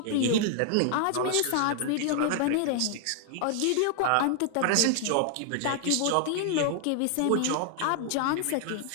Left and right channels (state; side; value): different; both; correlation 0.00